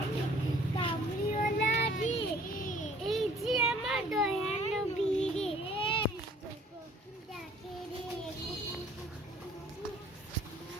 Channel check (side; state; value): both; normal; correlation 0.55